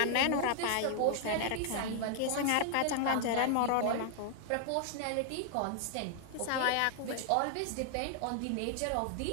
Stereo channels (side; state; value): both; different; correlation 0.00